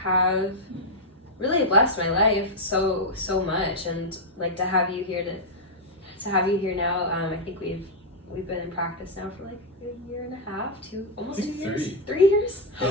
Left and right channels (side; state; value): both; normal; correlation -0.03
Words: really blessed my life so much, and like to have you here now. I think we've been in practice now for like a year and a half, almost 2 years. 3 years. Yeah,